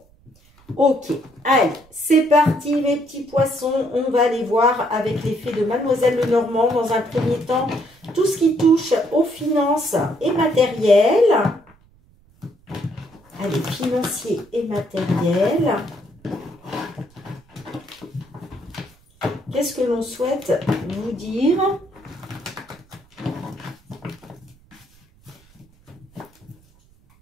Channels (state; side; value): noise; right; rumble, 30 dB below the sound